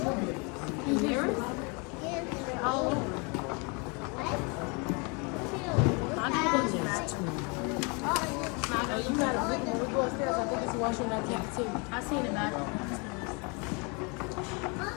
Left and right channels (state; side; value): quieter; right; 31.8 dB